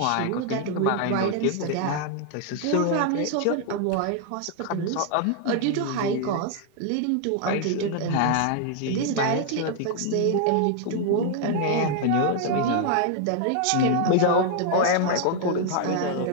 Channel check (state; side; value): different; both; correlation 0.00